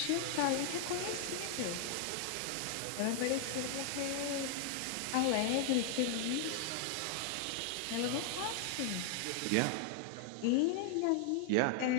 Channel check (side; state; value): both; different; correlation 0.00